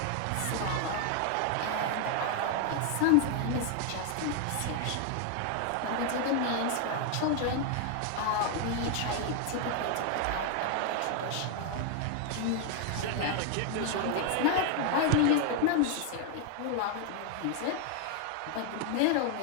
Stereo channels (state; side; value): different; both; correlation 0.00